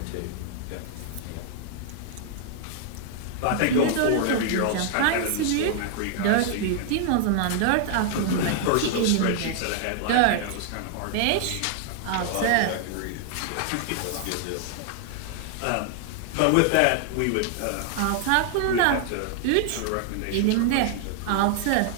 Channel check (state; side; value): different; both; correlation 0.00